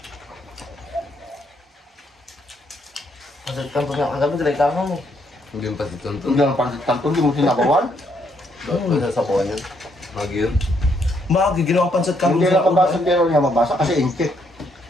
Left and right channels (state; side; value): normal; both; correlation 0.73